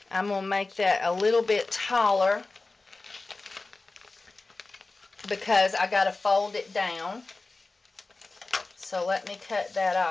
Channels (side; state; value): right; quieter; 3.5 dB